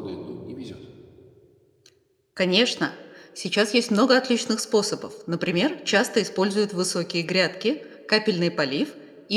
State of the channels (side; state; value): both; identical; correlation 1.00